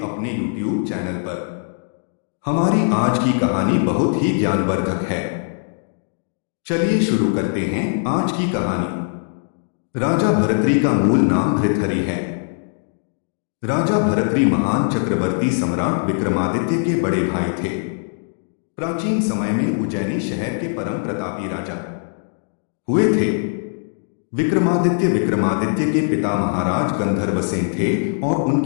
अपने YouTube चैनल पर। हमारी आज की कहानी बहुत ही ज्ञानवर्धक है। चलिए शुरू करते हैं आज की कहानी। राजा भर्तृ का मूल नाम भृतहरि है। राजा भर्तृ महान चक्रवर्ती सम्राट विक्रमादित्य के बड़े भाई थे। प्राचीन समय में उज्जैनी शहर के परम प्रतापी राजा हुए थे। विक्रमादित्य के पिता महाराज गंधर्वसेन थे और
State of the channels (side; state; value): right; silent; digital silence